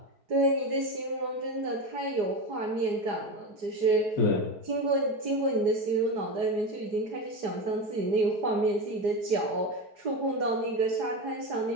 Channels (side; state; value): left; late; 4.9 ms